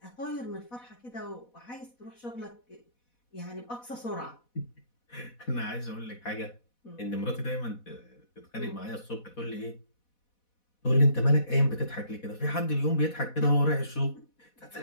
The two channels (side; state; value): right; late; 4.1 ms